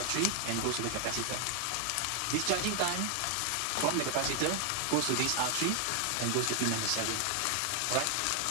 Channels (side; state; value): both; different; correlation 0.00